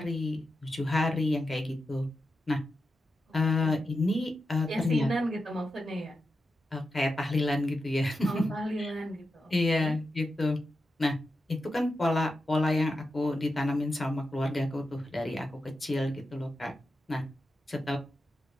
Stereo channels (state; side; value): normal; both; correlation 0.89